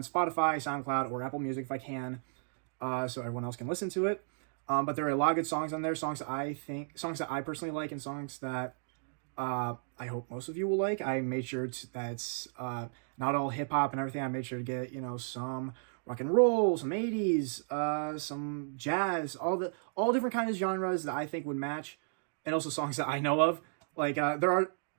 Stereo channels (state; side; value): silent; left; digital silence